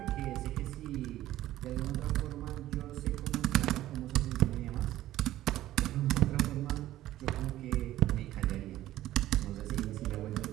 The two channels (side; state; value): left; quieter; 14.4 dB